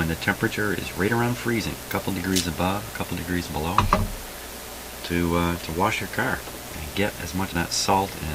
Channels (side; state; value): both; identical; correlation 1.00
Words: the temperature is right around freezing, a couple degrees above, a couple degrees below, to wash your car and get as much of that salt